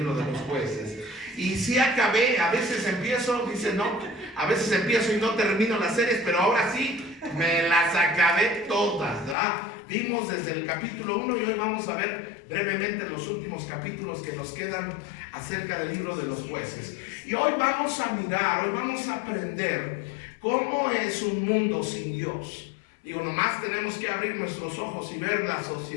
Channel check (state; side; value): drops out; right; at 9.3 s